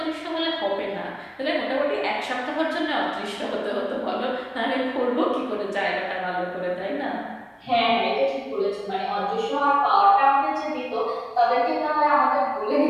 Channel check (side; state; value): both; identical; correlation 1.00